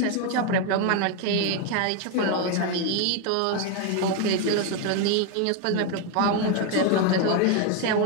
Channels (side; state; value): both; different; correlation 0.01